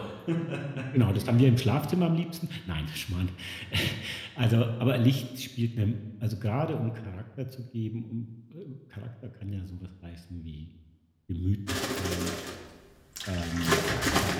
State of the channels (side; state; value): both; identical; correlation 1.00